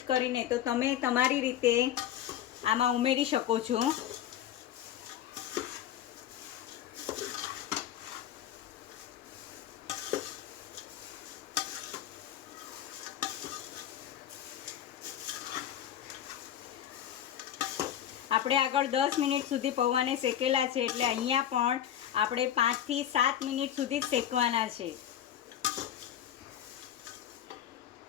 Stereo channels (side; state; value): right; quieter; 10.7 dB